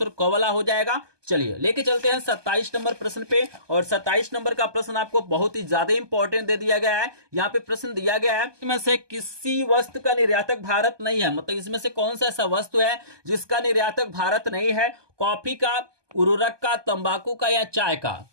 क वाला हो जाएगा। चलिए लेके चलते हैं 27 नंबर प्रश्न पे, और 27 नंबर का प्रश्न आपको बहुत ही ज्यादा इंपॉर्टेंट दे दिया गया है। यहाँ पे प्रश्न दिया गया है इसमें से किसी वस्तु का निर्यातक भारत नहीं है, मतलब इसमें से कौन सा ऐसा वस्तु है जिसका निर्यातक भारत नहीं है? कॉफी का, उर्वरक का, तंबाकू का, या चाय का?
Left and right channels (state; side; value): late; left; 1.2 ms